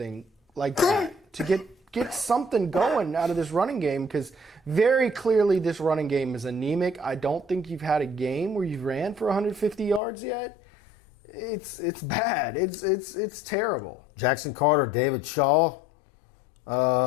like that to get something going out of this running game? Because very clearly this running game is anemic. I don't think you've had a game where you've ran for 150 yards yet. It's bad. It's terrible. Jackson Carter, David Shaw,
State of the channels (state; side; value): drops out; right; at 10.0 s